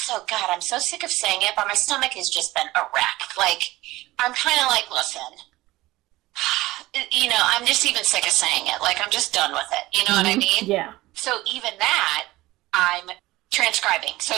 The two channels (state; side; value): quieter; left; 18.3 dB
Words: God, I'm so sick of saying it, but my stomach has just been a wreck. Like, I'm kind of like, listen, I'm just even sick of saying it. Like, I'm just done with it. You know what I mean? Yeah. So even that, I'm transcribing. So